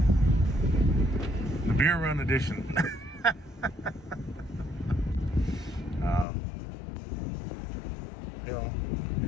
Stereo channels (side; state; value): right; drops out; at 6.2 s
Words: The beer run edition. You know,